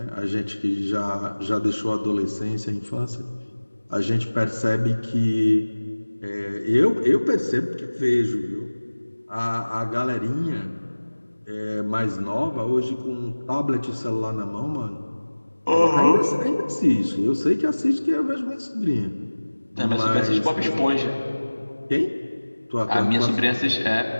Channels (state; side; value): inverted; both; correlation -1.00